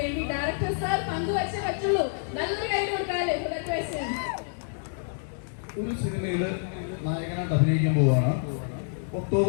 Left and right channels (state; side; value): silent; right; digital silence